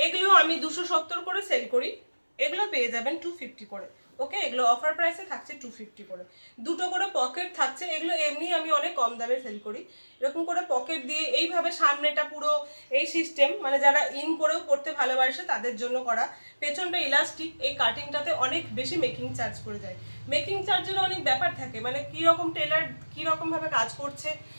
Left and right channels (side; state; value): both; inverted; correlation -1.00